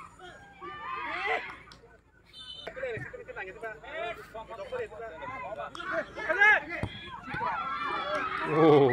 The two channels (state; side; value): identical; both; correlation 1.00